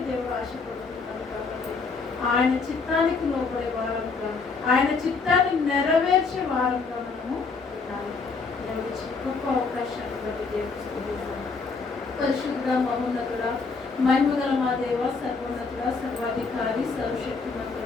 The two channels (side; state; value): right; quieter; 4.6 dB